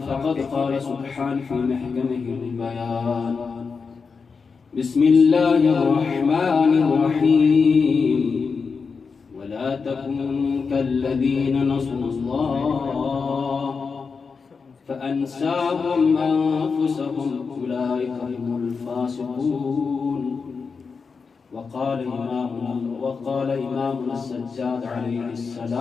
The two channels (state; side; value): quieter; right; 5.2 dB